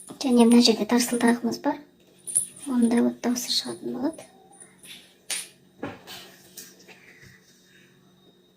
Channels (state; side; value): identical; both; correlation 1.00